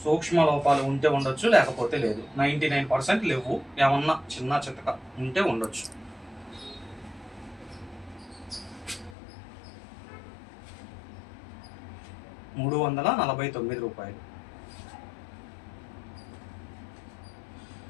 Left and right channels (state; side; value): drops out; right; at 9.2 s